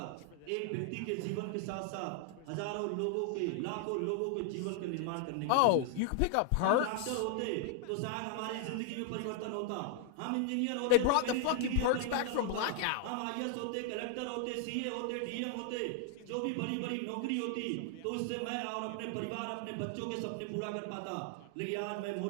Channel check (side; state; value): both; different; correlation 0.00